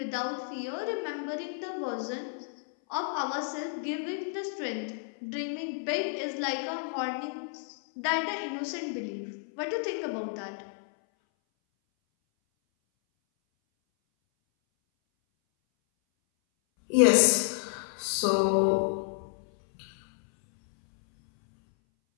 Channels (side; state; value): right; silent; 57 dB below the other